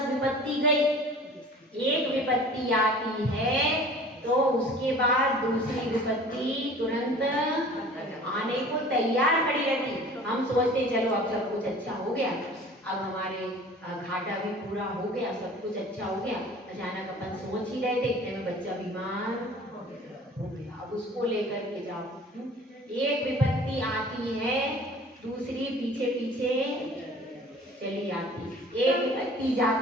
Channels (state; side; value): normal; both; correlation 0.46